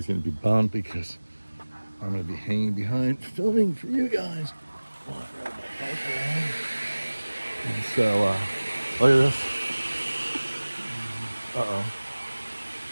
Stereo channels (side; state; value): both; inverted; correlation -1.00